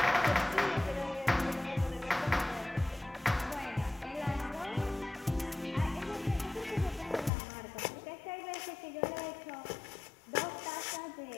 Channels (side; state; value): right; drops out; at 7.3 s